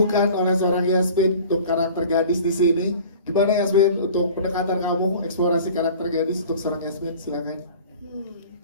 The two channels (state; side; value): inverted; both; correlation -0.44